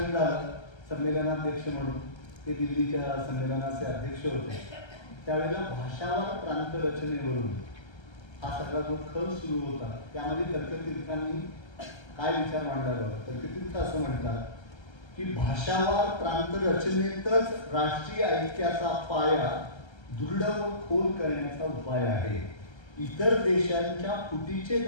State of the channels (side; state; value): right; late; 1.3 ms